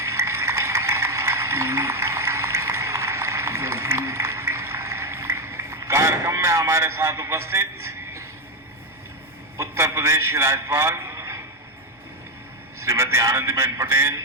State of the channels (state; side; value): normal; both; correlation 0.08